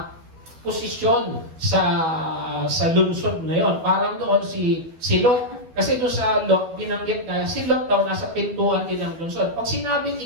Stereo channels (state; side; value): late; left; 12 ms